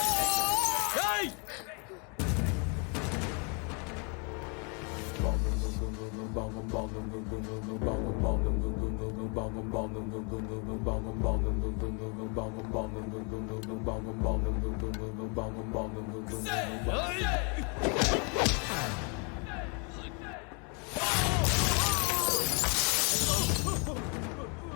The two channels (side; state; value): right; quieter; 35.2 dB